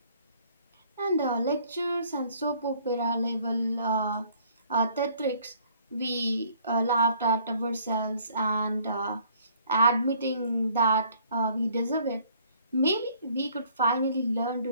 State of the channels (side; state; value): both; inverted; correlation -0.60